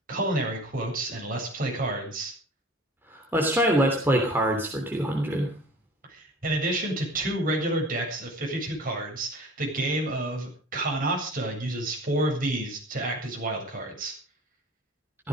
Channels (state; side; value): normal; both; correlation 0.43